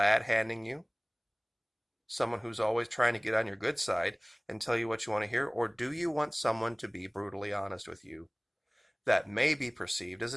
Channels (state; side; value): identical; both; correlation 1.00